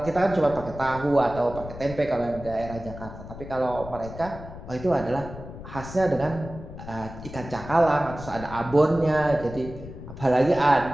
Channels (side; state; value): left; noise; rumble, 12 dB below the sound